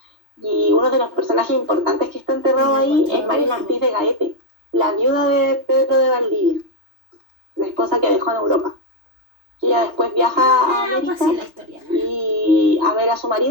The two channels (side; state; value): left; late; 3.3 ms